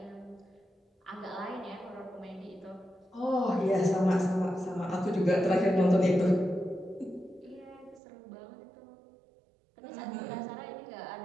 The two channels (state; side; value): drops out; left; at 8.0 s